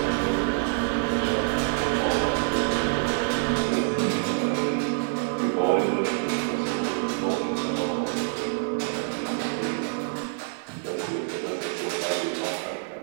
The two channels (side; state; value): left; silent; digital silence